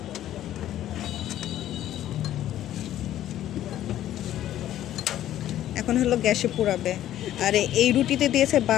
এখন হলো গ্যাসে পোড়াবে। আর এই রুটিতে দিয়েছে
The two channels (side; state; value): right; quieter; 12.5 dB